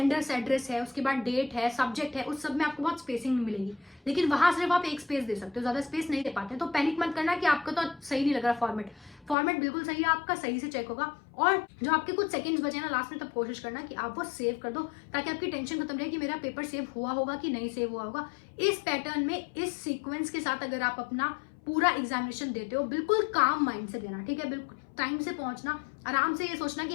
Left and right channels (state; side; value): drops out; right; at 9.3 s